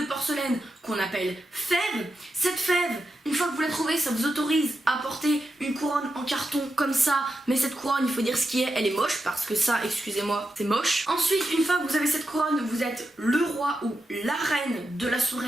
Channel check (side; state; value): both; normal; correlation 0.88